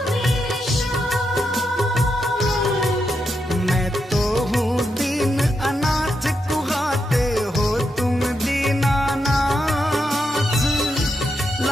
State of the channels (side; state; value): both; normal; correlation 0.84